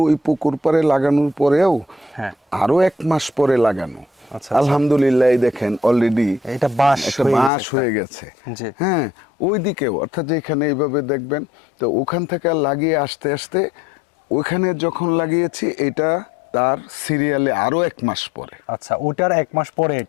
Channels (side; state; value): right; drops out; at 7.5 s